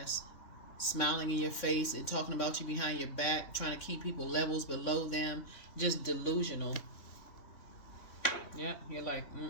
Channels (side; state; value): right; late; 3.6 ms